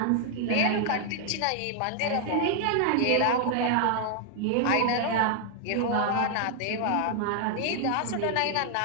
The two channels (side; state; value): both; different; correlation 0.00